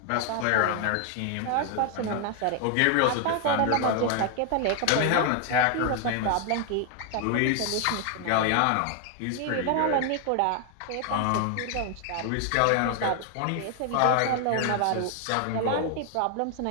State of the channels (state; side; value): different; both; correlation 0.00